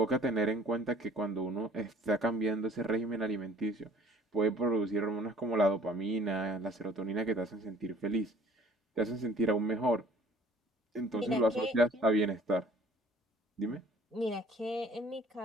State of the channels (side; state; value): both; normal; correlation 0.53